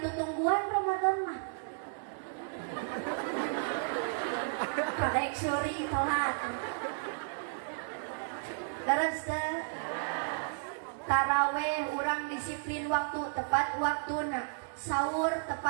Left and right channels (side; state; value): left; silent; digital silence